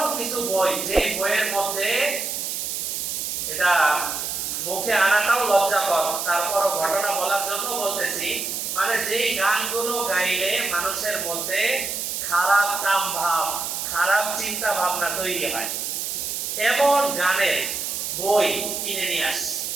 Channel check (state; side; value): noise; right; hiss, 3 dB below the sound